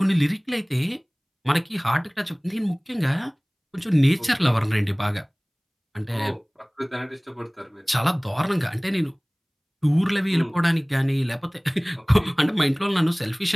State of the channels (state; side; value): identical; both; correlation 1.00